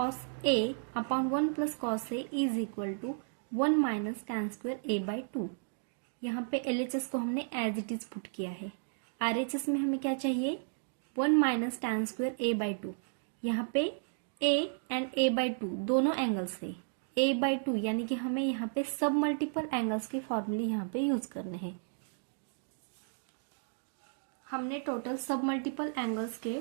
A upon 1 plus cos A is equal to 1 minus tan square A by 2। यहाँ पे LHS को हमने एज इट इज पुट किया है। RHS में हमें क्या चाहिए, 1 minus tan square A by 2। यहाँ पे A एंड A बाई 2 दोनों एंगल्स है। A बाई 2 यानी कि हमें यहाँ पे सब मल्टीपल एंगल्स के फॉर्मूले यहाँ पे यूज करने हैं। हमने टोटल सब मल्टीपल एंगल्स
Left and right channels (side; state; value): left; silent; digital silence